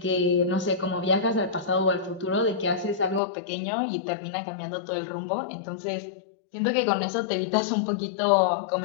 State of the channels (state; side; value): drops out; right; at 3.2 s